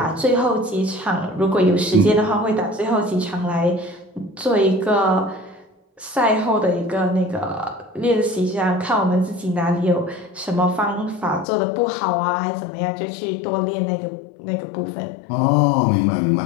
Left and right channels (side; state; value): right; drops out; at 11.5 s